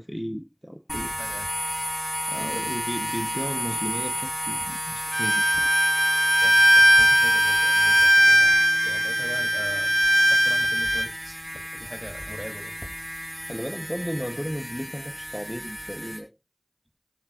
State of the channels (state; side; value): identical; both; correlation 1.00